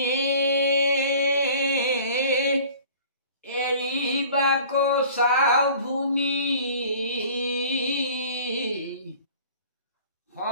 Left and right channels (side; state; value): both; inverted; correlation -0.47